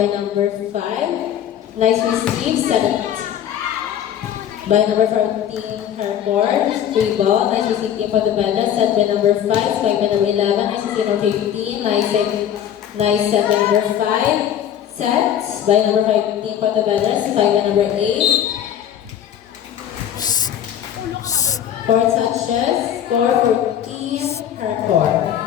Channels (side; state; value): right; quieter; 10.0 dB